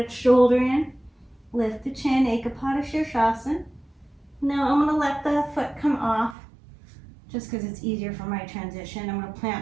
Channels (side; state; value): left; drops out; at 6.4 s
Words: shoulder in. Lift the chin, Ekapadasirsasana. Now I'm going to let the foot come off just because it's easier for my transition. I'm going to